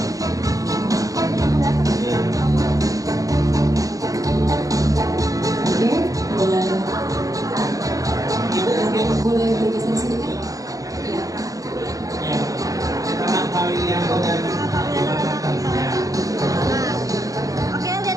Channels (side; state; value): left; late; 0.17 ms